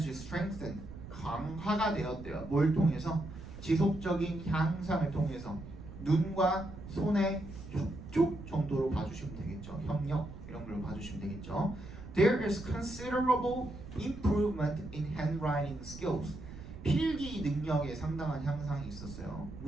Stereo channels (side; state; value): right; noise; rumble, 13 dB below the sound